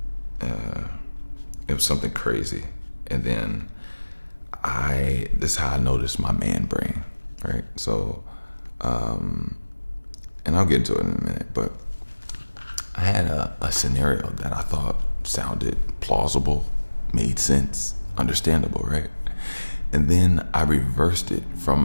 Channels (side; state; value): both; inverted; correlation -1.00